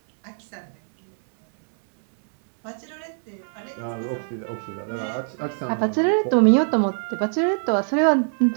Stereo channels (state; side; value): silent; left; digital silence